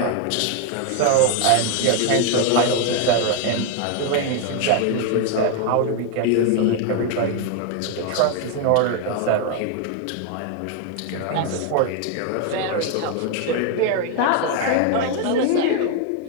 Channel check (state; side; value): different; both; correlation 0.01